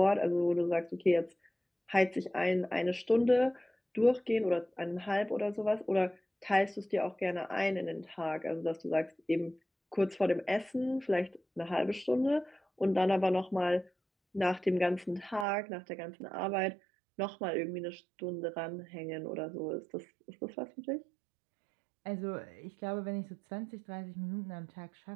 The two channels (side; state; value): left; drops out; at 15.5 s